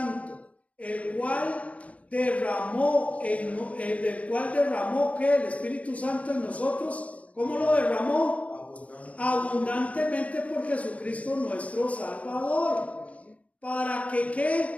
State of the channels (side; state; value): right; late; 0.066 ms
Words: el cual derramó que el Espíritu Santo en nosotros. ¿Cómo lo derramó? Abundantemente por Jesucristo nuestro Salvador. ¿Para que